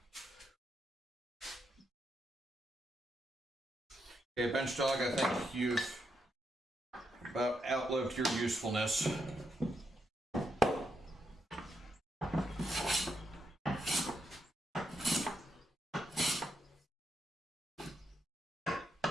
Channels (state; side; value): normal; both; correlation 0.82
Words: Okay, bench dog, I think you've about outlived your usefulness.